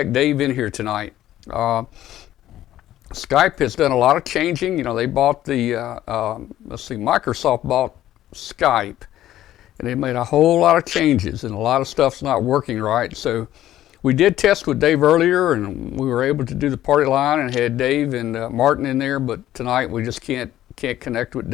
Dave in here tonight. Skype has done a lot of changing. You know, they bought Microsoft bought Skype, and they made a whole lot of changes, and a lot of stuff's not working right. So we did test with Dave earlier, and we were able to do the party line and had Dave and Martin in there, but tonight we just can't connect with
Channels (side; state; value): right; quieter; 13.2 dB